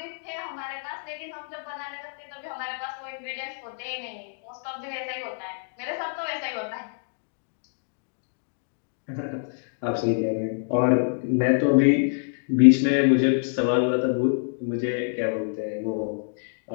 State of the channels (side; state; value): right; silent; digital silence